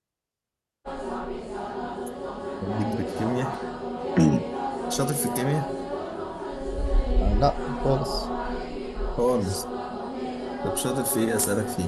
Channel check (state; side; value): identical; both; correlation 1.00